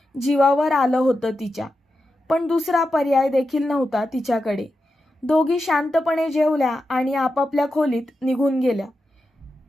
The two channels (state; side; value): normal; both; correlation 0.89